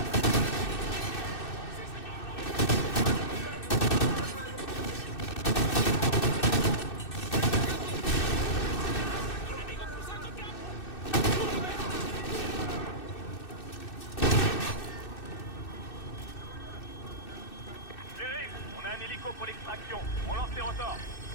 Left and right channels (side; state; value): right; late; 2.6 ms